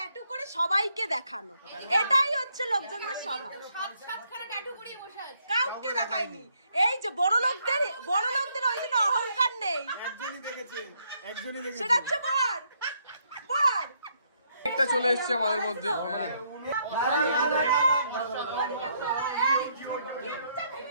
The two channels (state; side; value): inverted; both; correlation -0.73